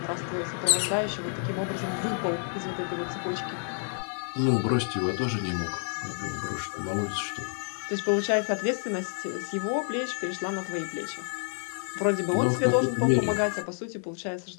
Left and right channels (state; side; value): silent; right; 59 dB below the other